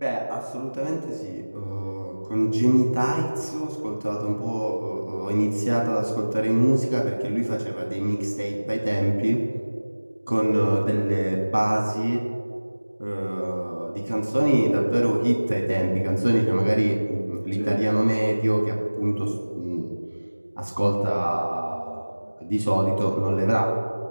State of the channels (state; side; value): inverted; both; correlation -1.00